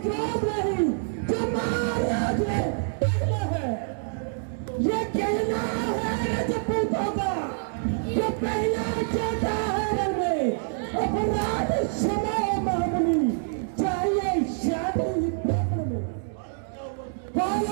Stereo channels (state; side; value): silent; left; digital silence